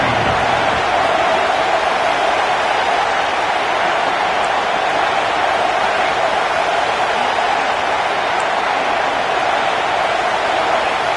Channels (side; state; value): both; identical; correlation 1.00